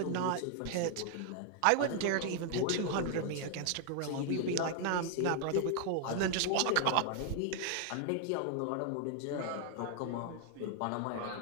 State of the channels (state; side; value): different; both; correlation 0.00